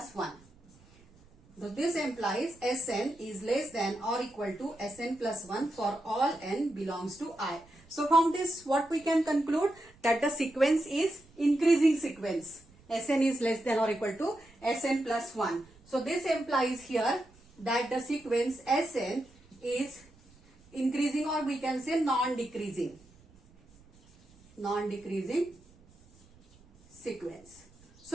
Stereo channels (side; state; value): right; noise; rumble, 27 dB below the sound